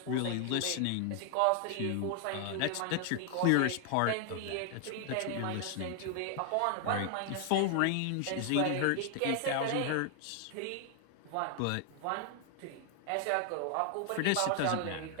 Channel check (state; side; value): different; both; correlation 0.00